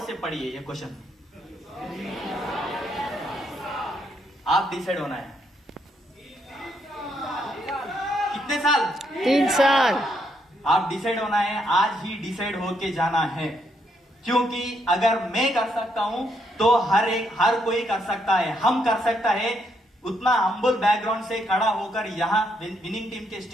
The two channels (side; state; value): both; normal; correlation 0.75